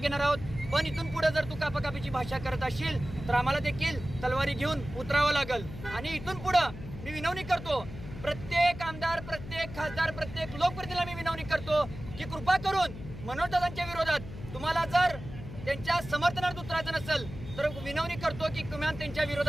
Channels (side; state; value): left; noise; hum, 12 dB below the sound